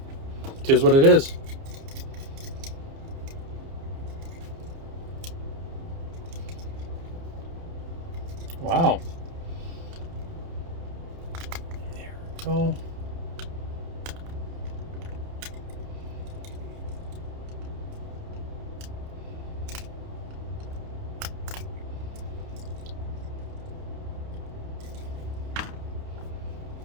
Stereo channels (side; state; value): left; late; 29 ms